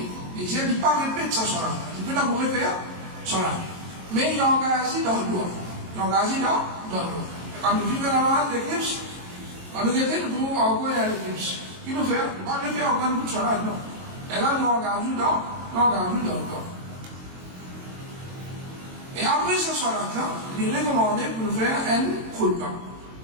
il dit, il ne pas répéter ça sur la. Il peut d'abord faire sur la. Mais il engage dans le doigt. Quand nous vivons dans l'éclipse, quand nous guettons, nous pouvons encore dans l'éclipse. Qui nous fait? Il ne pas le faire en sur la, non. Et là, nous engageons dans le doigt. Et après ce soir-là, il est recommandé pour nous faire un khutbah.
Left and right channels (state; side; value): late; left; 22 ms